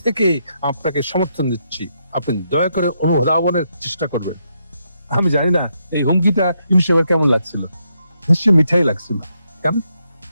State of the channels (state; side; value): inverted; both; correlation -0.79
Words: থেকে আপনাকে সমর্থন দিচ্ছি, আপনি দয়া করে অনুধাবনের চেষ্টা করবেন। আমি জানি না এই হুমকিটা ইনশাল্লাহ কেমন লাগছিল, নিশ্চয়ই মিঠাই লাগছিল। কেন?